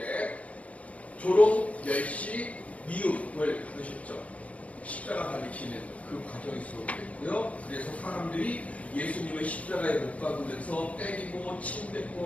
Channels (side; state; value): right; late; 0.066 ms